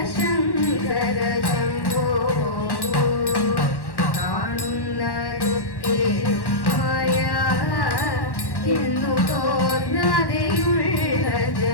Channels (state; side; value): late; right; 1.1 ms